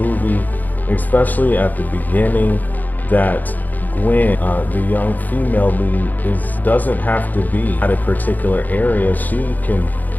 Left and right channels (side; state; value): right; late; 0.083 ms